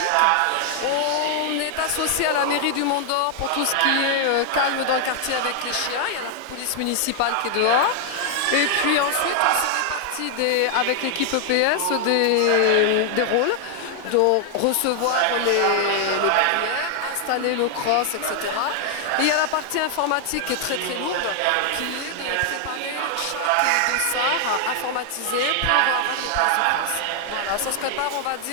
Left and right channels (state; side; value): different; both; correlation 0.00